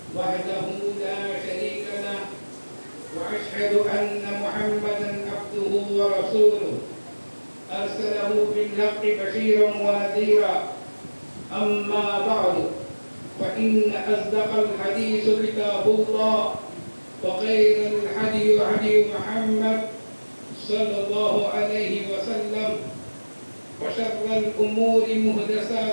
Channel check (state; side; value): inverted; both; correlation -1.00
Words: وحده لا شريك له وأشهد أن محمدا عبده ورسوله أرسله بالحق بشيرا ونذيرا أما بعد فإن أصدق الحديث كتاب الله وخير الهدي هدي محمد صلى الله عليه وسلم وشر الأمور